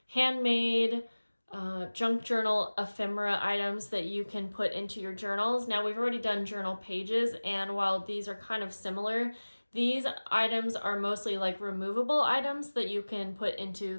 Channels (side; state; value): both; inverted; correlation -1.00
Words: handmade junk journal ephemera items that you can put into your journals. Now we've already done journal pages, and while these are kind of similar, these items are mostly like removable items that you can put